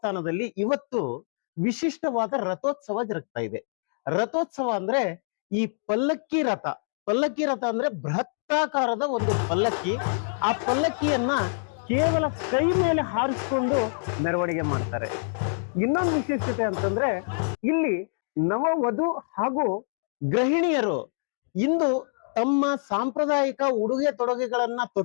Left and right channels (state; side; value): silent; right; digital silence